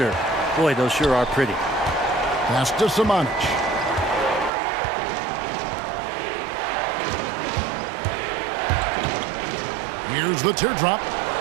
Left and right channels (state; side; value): drops out; left; at 4.5 s